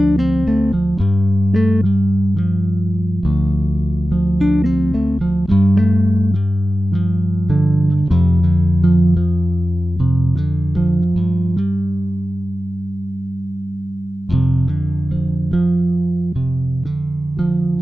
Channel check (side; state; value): both; normal; correlation 0.94